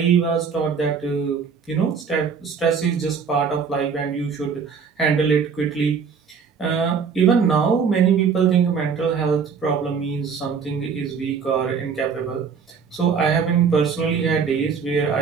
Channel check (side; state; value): left; quieter; 6.1 dB